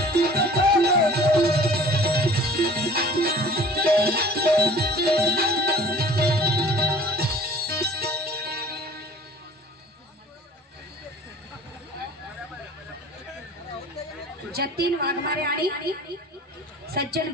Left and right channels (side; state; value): both; normal; correlation 0.47